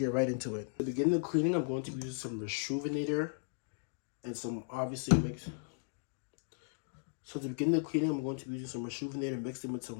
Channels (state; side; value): silent; right; digital silence